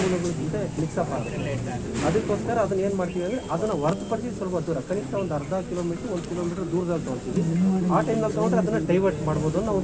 ಜೊತೆ ಮಿಕ್ಸಪ್ ಆಗುತ್ತೆ. ಅದಕ್ಕೋಸ್ಕರ ಅದನ್ನು ಏನು ಮಾಡ್ತೀವಿ ಅಂದರೆ ಅದನ್ನು ಹೊರತುಪಡಿಸಿ ಸ್ವಲ್ಪ ದೂರ, ಕನಿಷ್ಠ ಒಂದು ಅರ್ಧ ಕಿಲೋಮೀಟ್ರ್ 1 ಕಿಲೋಮೀಟ್ರ್ ದೂರದಲ್ಲಿ ತೊಗೊಳ್ತೀವಿ. ಆ ಟೈಮ್ನಲ್ಲಿ ತೊಗೊಂಡ್ರೆ ಅದನ್ನು ಡೈವರ್ಟ್ ಮಾಡ್ಬೋದು ಅನ್ನೋ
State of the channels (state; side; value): identical; both; correlation 1.00